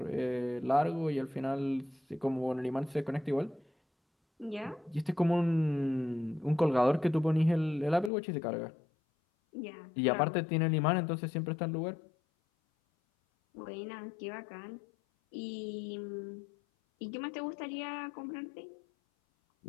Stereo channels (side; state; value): right; drops out; at 8.1 s